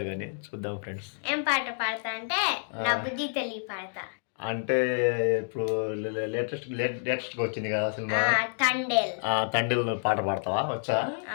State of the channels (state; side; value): silent; right; digital silence